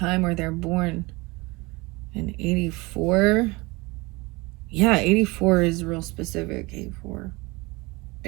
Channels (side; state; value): left; quieter; 24.2 dB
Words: where they're born in 84. Yeah, 84 is real specific, 84.